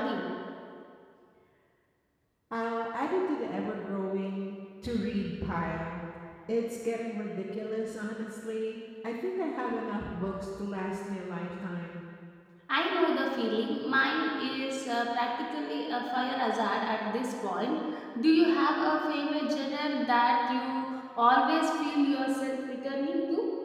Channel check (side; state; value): both; identical; correlation 1.00